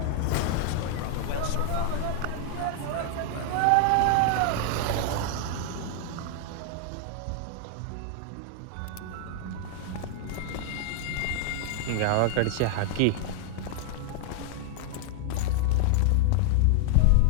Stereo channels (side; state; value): both; different; correlation 0.00